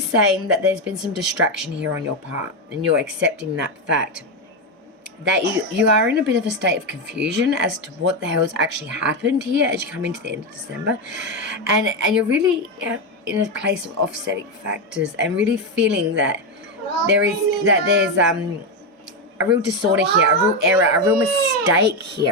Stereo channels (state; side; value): normal; both; correlation 0.09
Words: saying that there's been some distraction here on your part, and you're accepting that fact that you are in a bit of a state of confusion as to what the hell has actually happened here as you come into the end of December, and you're really in a place of offsetting factors, and really feeling that there's a real disorder here, a real error, a real mistake